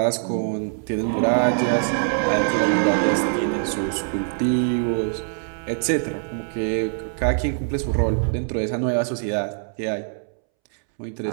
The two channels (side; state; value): left; silent; 63 dB below the other